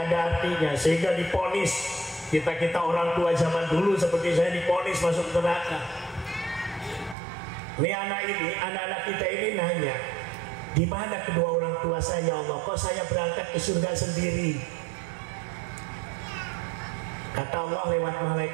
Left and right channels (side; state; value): left; drops out; at 7.2 s